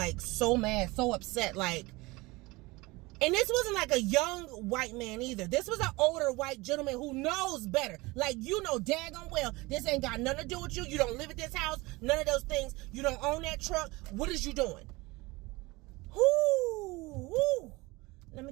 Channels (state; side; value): quieter; left; 22.6 dB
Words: so mad, so upset. Like, and this wasn't like a young white man either. This was an older white gentleman who knows better. Like, daggone well, this ain't got nothing to do with you. You don't live at this house. None of those things. You don't own that truck. What is you doing? Whoo. Let me